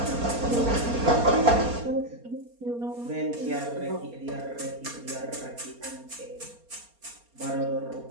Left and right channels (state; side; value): late; left; 4.3 ms